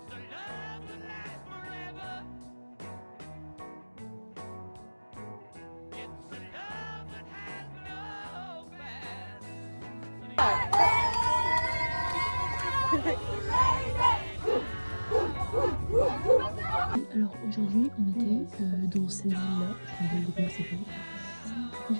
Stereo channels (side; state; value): both; inverted; correlation -1.00